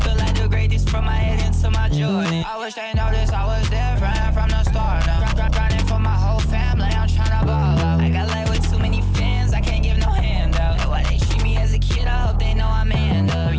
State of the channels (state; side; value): identical; both; correlation 1.00